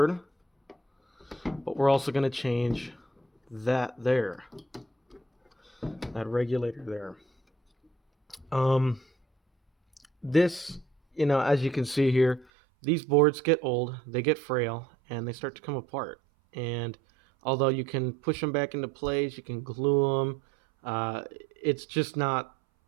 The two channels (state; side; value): drops out; left; at 12.5 s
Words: but we're also going to change that regulator there. This, as you can see here, these boards get old, they get frail, and they start to come apart. And although you can push them back into place, you can glue them, it's just not